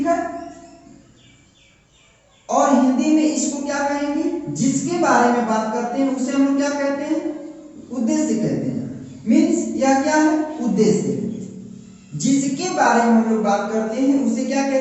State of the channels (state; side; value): identical; both; correlation 1.00